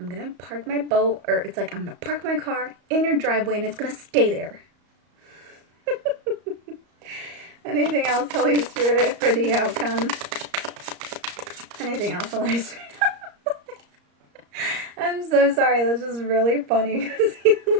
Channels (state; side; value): late; left; 34 ms